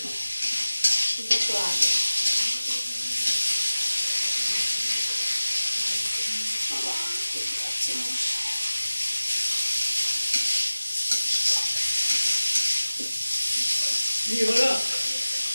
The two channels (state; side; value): inverted; both; correlation -0.97